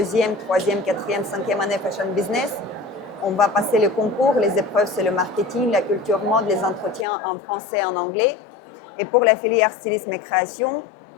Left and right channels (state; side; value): drops out; right; at 7.1 s